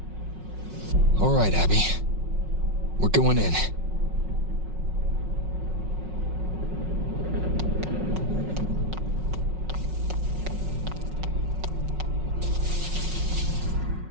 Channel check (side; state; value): left; late; 5.4 ms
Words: All right, Abby. We're going in.